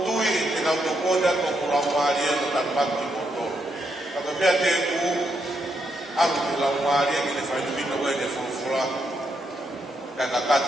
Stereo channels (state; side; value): normal; both; correlation 0.79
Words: tui e nau to koda ko kurau maria no tanpaki moto. Ako mea te ku alu te lau maria ki ne whainumina ue ne whulfula. Kai